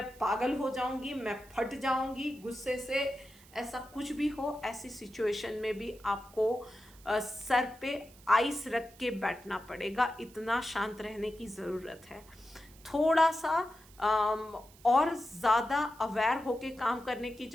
पागल हो जाऊंगी, मैं फट जाऊंगी गुस्से से। ऐसा कुछ भी हो, ऐसी सिचुएशन में भी आपको सर पे आइस रख के बैठना पड़ेगा, इतना शांत रहने की ज़रूरत है। थोड़ा सा और ज़्यादा अवेयर होके काम करने की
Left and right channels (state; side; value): noise; right; hiss, 24 dB below the sound